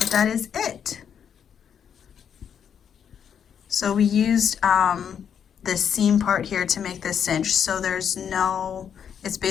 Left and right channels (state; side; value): quieter; right; 8.1 dB